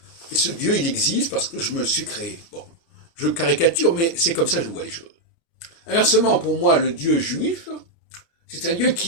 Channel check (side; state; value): right; late; 30 ms